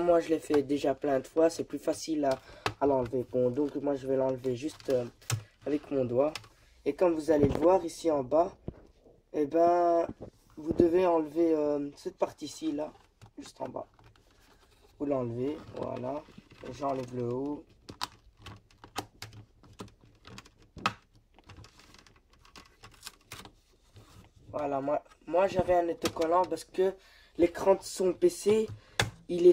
moi je l'ai fait déjà plein de fois, c'est plus facile à l'enlever. Bon, donc moi je vais l'enlever juste avec mon doigt. Et comme vous allez le voir ici en bas, eh ben, vous devez enlever cette partie-ci là, juste en bas. Vous l'enlevez, voilà. J'enlève le haut. Voilà, moi j'avais un autocollant parce que l'écran de son PC, il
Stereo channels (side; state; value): both; identical; correlation 1.00